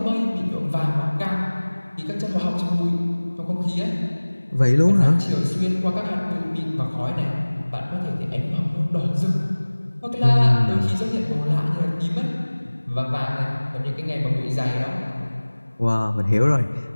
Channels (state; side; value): inverted; both; correlation -1.00